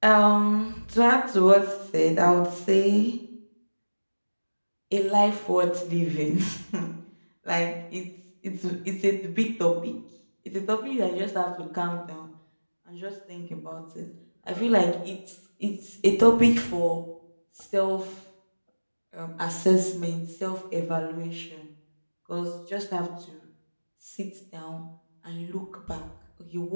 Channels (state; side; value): inverted; both; correlation -1.00